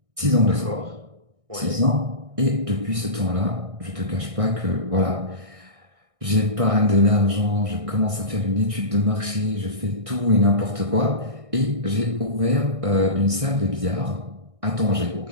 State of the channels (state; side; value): late; left; 1.6 ms